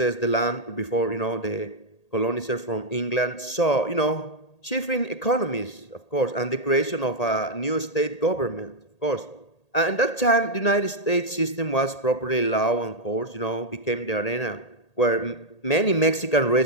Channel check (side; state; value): right; late; 1.8 ms